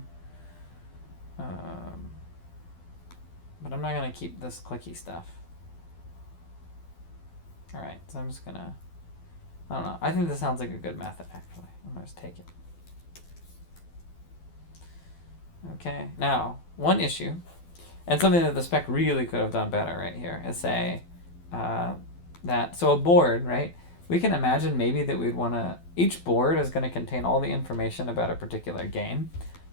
But I'm not gonna keep this clicky stuff. All right, so I'm just gonna, I don't know. I think this sounds like a good method, actually. I'm gonna just take it. Okay, now, one issue, and something that the spec really could have done better right here, is say that, so a board, right? We can imagine maybe that we'd wanna, each board is gonna contain all the information about a particular game.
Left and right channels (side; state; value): right; late; 12 ms